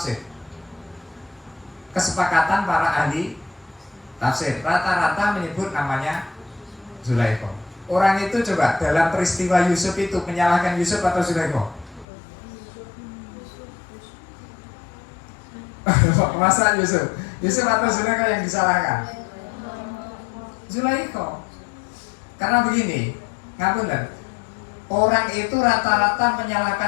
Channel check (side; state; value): right; drops out; at 12.1 s